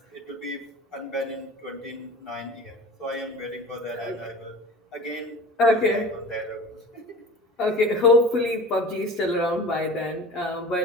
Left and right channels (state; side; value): normal; both; correlation 0.38